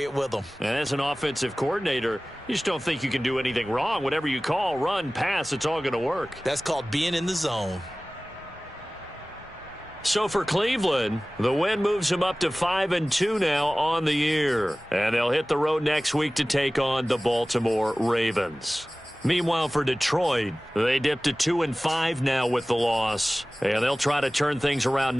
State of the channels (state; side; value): normal; both; correlation 0.98